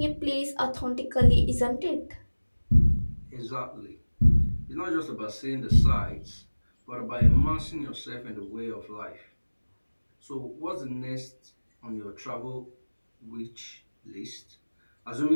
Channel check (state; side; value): inverted; both; correlation -1.00